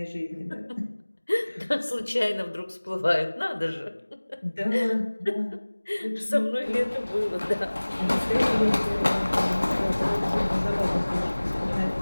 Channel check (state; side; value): inverted; both; correlation -1.00